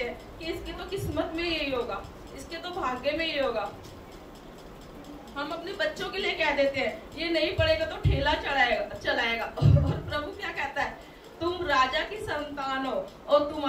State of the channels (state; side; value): identical; both; correlation 1.00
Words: हैं कि इसकी तो किस्मत में यही होगा, इसके तो भाग्य में यही होगा। हम अपने बच्चों के लिए कह देते हैं ये नहीं पढ़ेगा तो ठेला चलाएगा। और प्रभु क्या कहता है? तुम राजा की संतान हो और